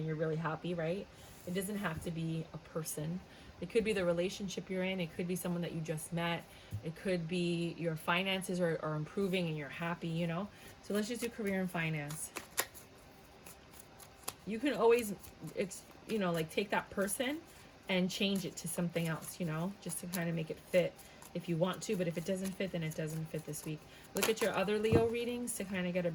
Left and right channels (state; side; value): identical; both; correlation 1.00